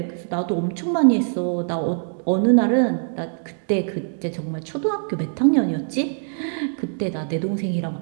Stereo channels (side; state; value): left; silent; digital silence